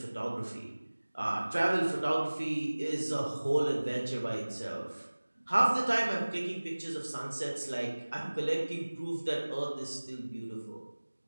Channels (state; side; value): inverted; both; correlation -1.00